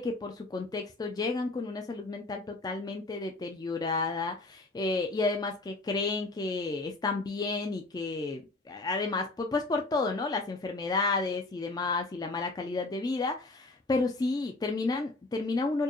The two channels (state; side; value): quieter; right; 3.1 dB